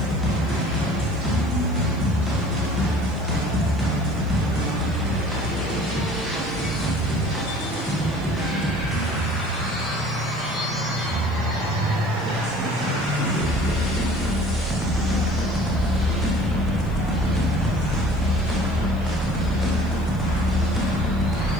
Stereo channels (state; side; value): noise; right; hiss, 27 dB below the sound